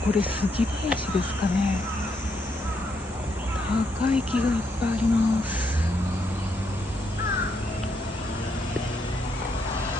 これ杉林ですかね。高い木がいっぱいあります。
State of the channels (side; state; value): both; normal; correlation 0.75